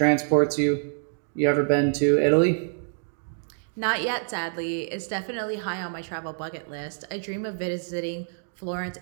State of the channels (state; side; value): silent; left; digital silence